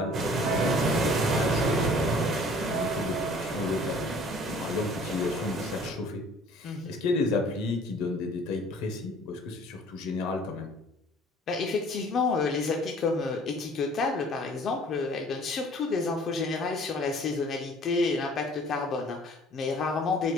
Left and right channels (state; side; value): normal; both; correlation 0.52